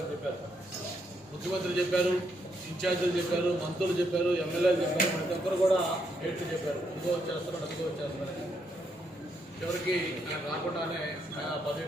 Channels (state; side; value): normal; both; correlation 0.77